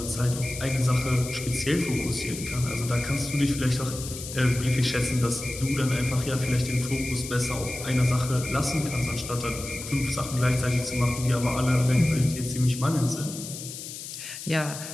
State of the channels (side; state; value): left; noise; hiss, 10 dB below the sound